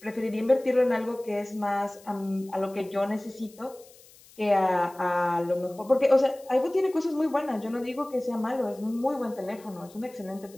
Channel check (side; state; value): left; noise; hiss, 24 dB below the sound